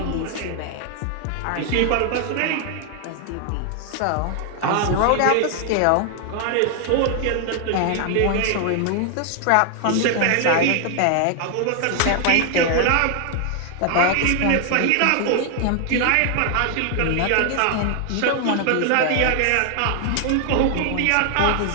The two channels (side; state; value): both; different; correlation 0.00